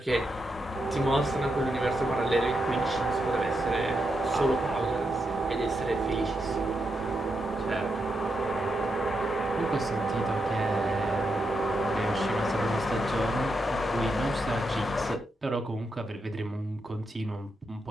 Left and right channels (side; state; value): both; normal; correlation 0.84